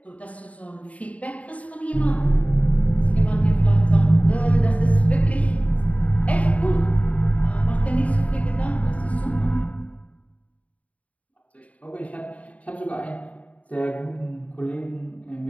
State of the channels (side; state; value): right; late; 0.068 ms